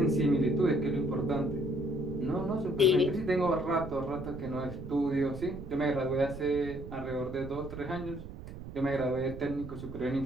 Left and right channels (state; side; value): noise; right; rumble, 11 dB below the sound